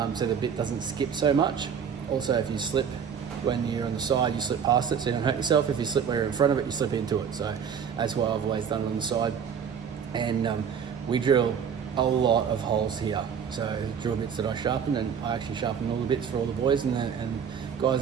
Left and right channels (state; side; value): quieter; left; 7.4 dB